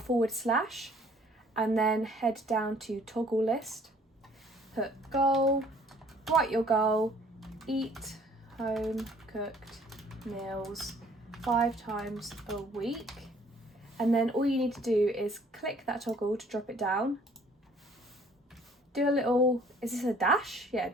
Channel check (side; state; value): both; normal; correlation 0.58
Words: and then head down to toggle list, put goal, write your goal, eat home cooked meals 5 times a week. And then all you need to do is click that toggle to drop it down. Do a little, is this a dash? Yeah,